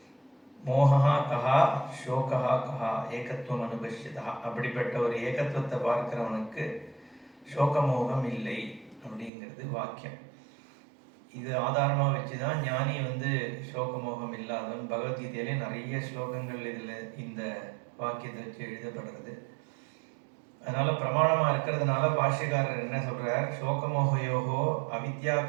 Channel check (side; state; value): left; drops out; at 9.3 s